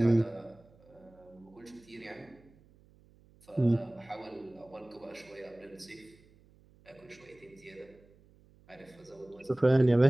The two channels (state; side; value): noise; right; hum, 28 dB below the sound